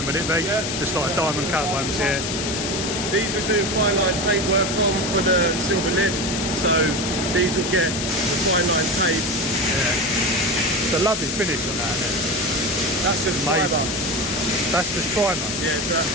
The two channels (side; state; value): left; noise; hiss, 3 dB below the sound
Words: would it be? Yeah. Just like diamond cut ones, yeah. These we do fine line tape work on for the silver lip. So these will get fine line tape. Yeah. It's a lovely finish on that. That's just Amazing. fibre. That's just primer. Yeah, so that's